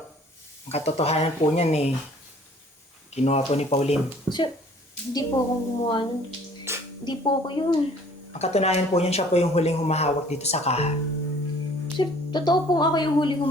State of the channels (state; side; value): normal; both; correlation 0.54